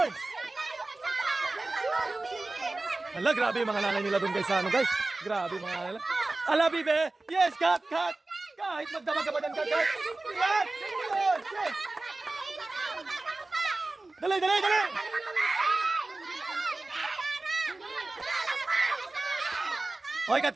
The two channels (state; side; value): quieter; left; 3.1 dB